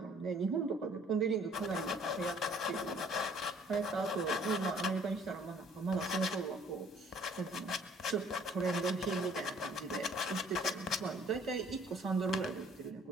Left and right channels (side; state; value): both; normal; correlation 0.58